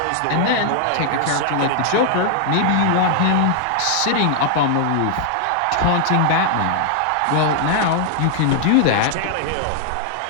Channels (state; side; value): different; both; correlation 0.00